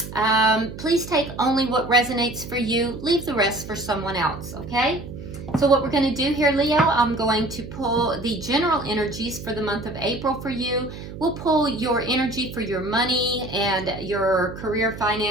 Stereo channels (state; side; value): noise; right; hum, 12 dB below the sound